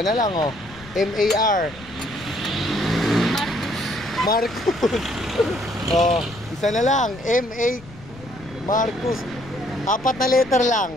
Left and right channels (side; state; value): left; noise; rumble, 19 dB below the sound